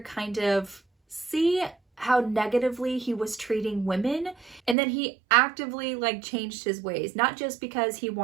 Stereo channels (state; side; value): drops out; left; at 4.8 s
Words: kind of see how negatively he was treating women, and then he actively changed his ways, not just because he